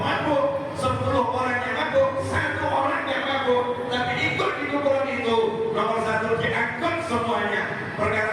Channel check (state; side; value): identical; both; correlation 1.00